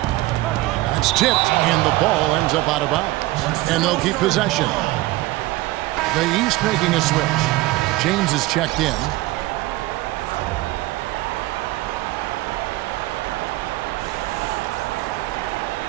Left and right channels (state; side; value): quieter; left; 18.7 dB